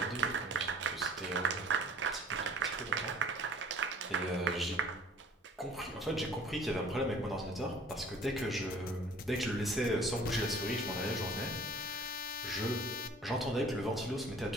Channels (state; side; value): normal; both; correlation 0.50